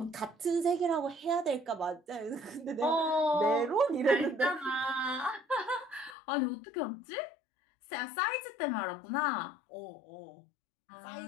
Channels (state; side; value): drops out; right; at 6.2 s